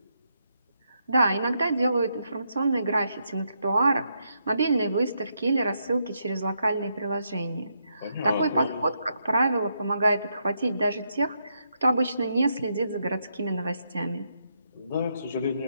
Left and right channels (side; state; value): both; inverted; correlation -0.79